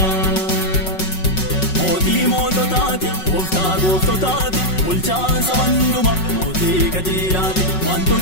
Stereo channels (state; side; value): late; right; 5.4 ms